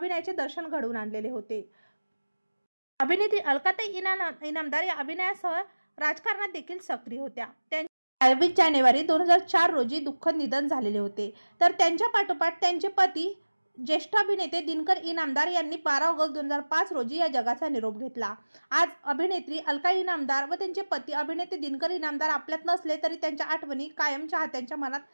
दर्शन घडवून आणलेले होते। अभिनेत्री अलकाताई इनामदार या अभिनयासह राजकारणात देखील सक्रिय होत्या। 22 जानेवारी 2004 रोजी दुःखद निधन झालेले होते। तर त्यांच्या पाठोपाठ त्यांचे पती ज्येष्ठ अभिनेते दिनकर इनामदार यांनी 12 ऑगस्ट 2005 रोजी या जगाचा निरोप घेतला। आज अभिनेत्री अलका इनामदार व त्यांचे पती अभिनेते दिनकर इनामदार आपल्यात नसले तरी त्यांच्या आठवणी कायम चाहत्यांच्या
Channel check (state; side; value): inverted; both; correlation -1.00